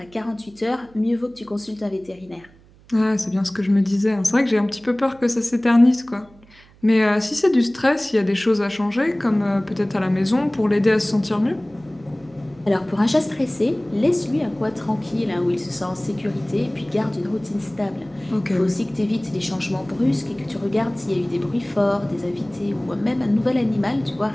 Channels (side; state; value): right; noise; hum, 27 dB below the sound